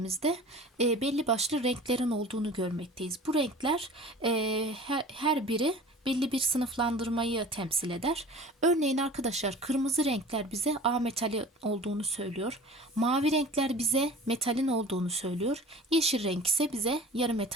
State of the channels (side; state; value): both; normal; correlation 0.41